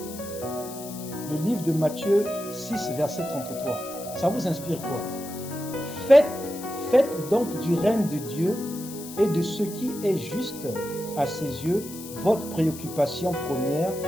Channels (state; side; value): noise; left; hiss, 13 dB below the sound